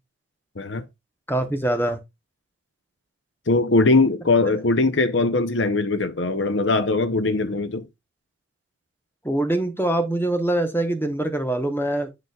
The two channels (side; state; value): both; normal; correlation 0.32